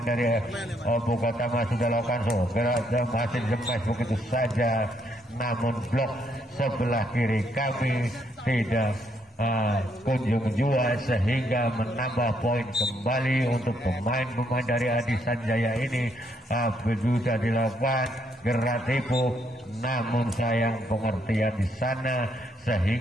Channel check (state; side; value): normal; both; correlation 0.74